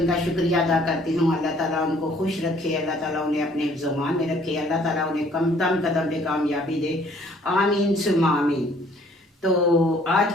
शुक्रिया अदा करती हूँ। अल्लाह ताला उनको खुश रखे, अल्लाह ताला उन्हें अपने हिफ्ज़-ओ-मान में रखे, अल्लाह ताला उन्हें कदम कदम पे कामयाबी दे, आमीन सुम्मा आमीन। तो आज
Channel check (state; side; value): normal; both; correlation 0.59